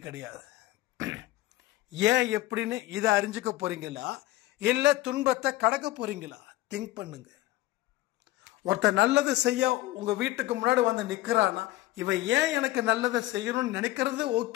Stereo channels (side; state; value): right; quieter; 17.2 dB